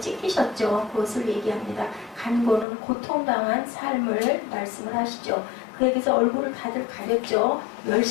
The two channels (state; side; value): drops out; right; at 2.7 s